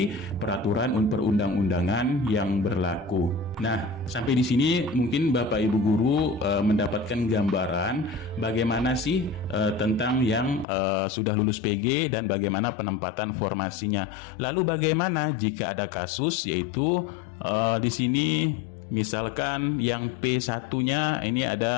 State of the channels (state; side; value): drops out; right; at 10.7 s